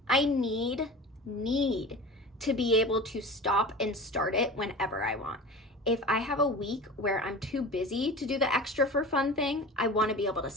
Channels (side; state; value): both; normal; correlation 0.34